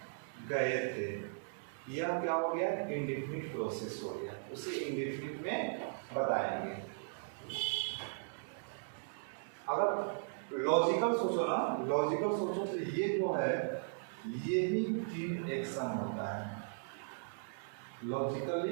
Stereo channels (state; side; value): silent; left; digital silence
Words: गए थे, यह क्या हो गया? इंडेफिनिट प्रोसेस हो गया, उसे इंडेफिनिट में बताएंगे। अगर लॉजिकल सोचो ना, लॉजिकल सोचो तो ये जो है ये ही 3 एक्शन होता है।